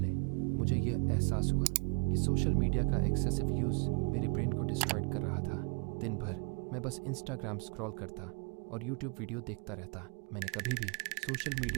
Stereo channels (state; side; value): quieter; left; 34.0 dB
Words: मुझे यह एहसास हुआ कि सोशल मीडिया का एक्सेसिव यूज़ मेरे ब्रेन को डिस्ट्रॉय कर रहा था। दिन भर मैं बस इंस्टाग्राम स्क्रॉल करता और यूट्यूब वीडियो देखता रहता। मैंने कभी भी सोशल